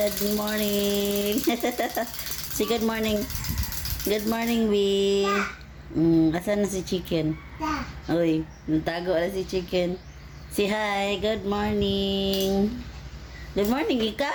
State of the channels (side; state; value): both; identical; correlation 1.00